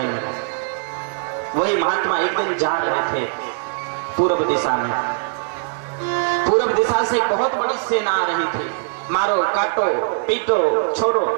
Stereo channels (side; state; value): left; silent; 65 dB below the other